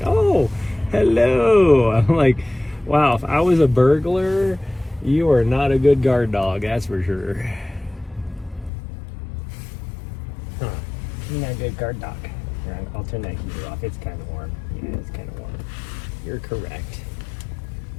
oh, hello. I'm like, wow, if I was a burglar, you are not a good guard dog, that's for sure. Huh. You're not a good guard dog. Here, I'll turn that heater off. It's kind of warm. Yeah, it's kind of warm. You're correct.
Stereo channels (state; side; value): drops out; right; at 8.7 s